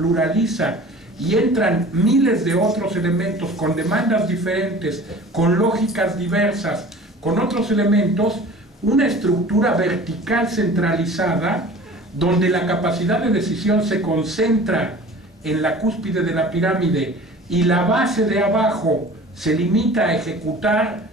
y entran miles de otros elementos con demandas diferentes, con lógicas diversas, con otros elementos, una estructura vertical centralizada, donde la capacidad de decisión se concentra en la cúspide de la pirámide y la base de abajo se limita a ejecutar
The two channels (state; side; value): normal; both; correlation 0.43